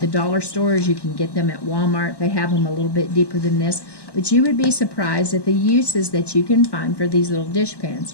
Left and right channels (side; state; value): right; late; 1.1 ms